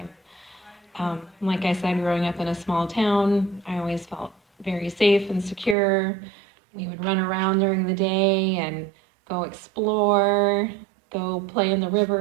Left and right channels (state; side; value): drops out; left; at 5.8 s